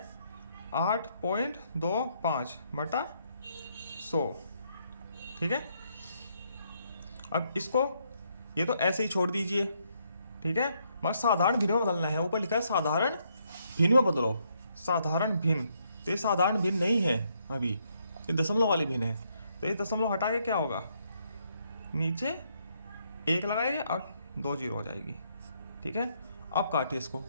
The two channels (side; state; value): both; inverted; correlation -0.73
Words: 8.25/100। ठीक है, अब इसको ये तो ऐसे ही छोड़ दीजिए, ठीक है, मगर साधारण भिन्न में बदलना है। ऊपर लिखा है साधारण भिन्न में बदलो, साधारण भिन्न, तो ये साधारण भिन्न नहीं है अभी, ये दशमलव वाली भिन्न है। तो ये दशमलव हटा के क्या होगा, नीचे 1 लगाएंगे और 2 जीरो हो जाएगी, ठीक है। अब काटिए इसको,